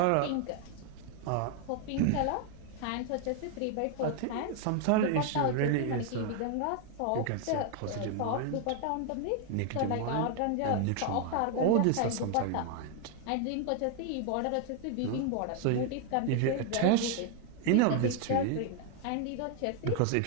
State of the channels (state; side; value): different; both; correlation 0.00